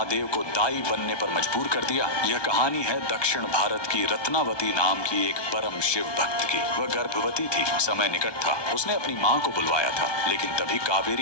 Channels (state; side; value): late; right; 1.2 ms